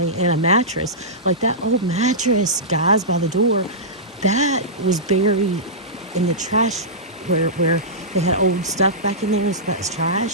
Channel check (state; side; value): normal; both; correlation -0.16